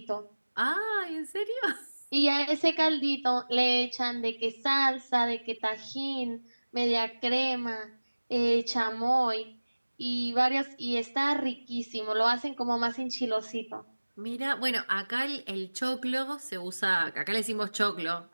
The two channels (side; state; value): both; inverted; correlation -1.00